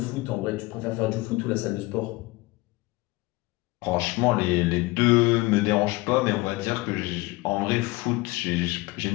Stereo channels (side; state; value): right; quieter; 22.1 dB